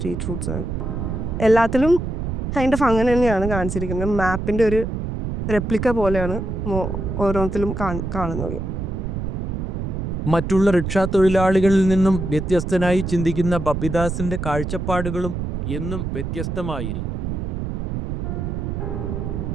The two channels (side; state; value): right; noise; rumble, 3 dB below the sound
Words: റൂട്ട്സ് ആണ്. എല്ലാത്തിലും കൈൻഡ് ഓഫ് അങ്ങനെ തന്നെയാണ് കാണിച്ചിരിക്കുന്നത്. മാപ്പിൻ്റെ ഒരു റെപ്ലിക്ക പോലെയാണ് ഓരോരുത്തരും കാണുന്നത്. മറ്റുള്ള റിക്ഷാ തൊഴിലാളികളിൽ നിന്നും വ്യത്യസ്തനായി ചിന്തിക്കുന്ന ബപിദാസിന്റെ കാഴ്ചപ്പാടുകളും എന്നും വ്യത്യസ്തമായിരിക്കും.